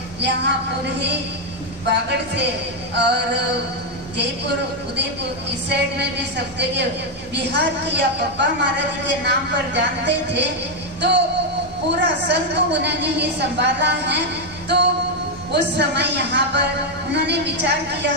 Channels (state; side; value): normal; both; correlation 0.02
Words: यहाँ पूरे बागड़ से और जयपुर उदयपुर इस साइड में भी सब जगह बिहार की या पप्पा महाराज के नाम पर जानते थे। तो पूरा संघ को उन्होंने ही संभाला है। तो उस समय यहाँ पर उन्होंने विचार किया